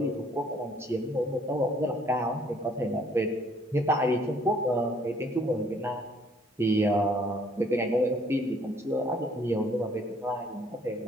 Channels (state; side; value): normal; both; correlation 0.61